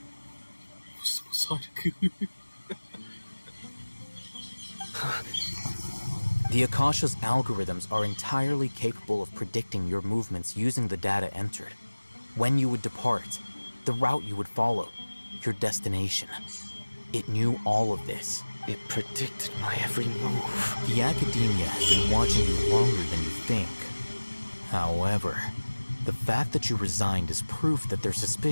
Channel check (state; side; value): inverted; both; correlation -1.00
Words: The Akasha's algorithms are entirely capable of predicting your movements using the data entered. When you would depart, the route you would follow, your destination. It knew all of this. It predicted my every move. The academia has been watching you longer than you think. However, the fact that you resigned is proof that their